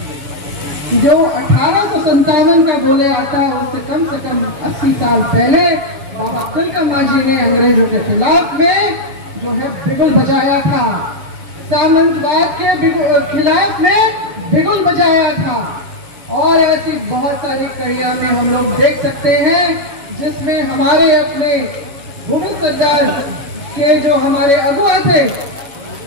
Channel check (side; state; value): left; late; 7.1 ms